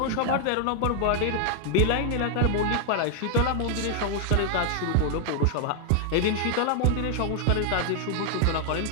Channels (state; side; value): different; both; correlation 0.00